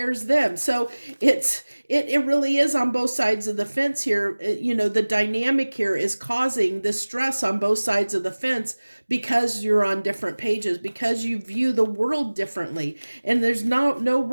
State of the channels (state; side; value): inverted; both; correlation -1.00